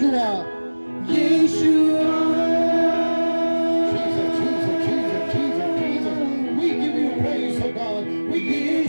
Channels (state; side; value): inverted; both; correlation -1.00